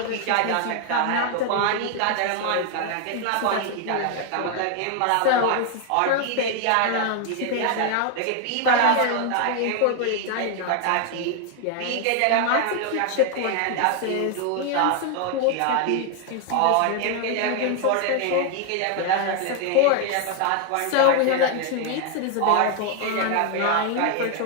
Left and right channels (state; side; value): different; both; correlation 0.00